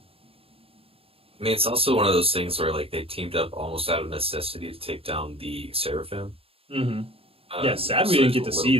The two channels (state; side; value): late; left; 0.27 ms